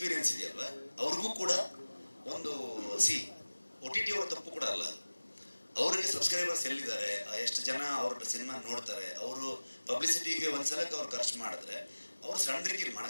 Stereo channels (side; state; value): both; inverted; correlation -1.00